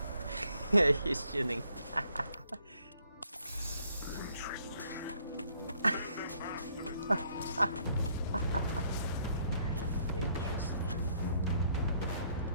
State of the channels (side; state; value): both; inverted; correlation -0.67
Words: fold. He's chilling.